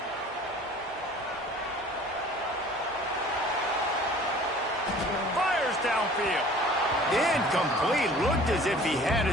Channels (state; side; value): normal; both; correlation 0.48